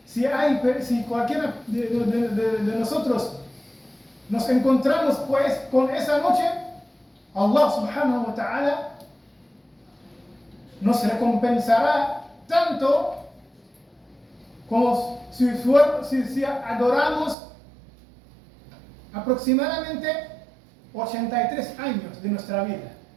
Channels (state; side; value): drops out; left; at 17.4 s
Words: si cualquiera de nosotros nos encontramos pues con esa noche, Allah subhanahu wa ta'ala nos recompensará tanto como si adoramos aproximadamente 83 años de nuestra vida.